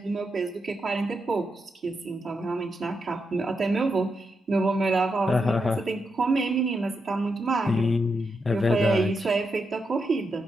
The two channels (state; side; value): normal; both; correlation 0.84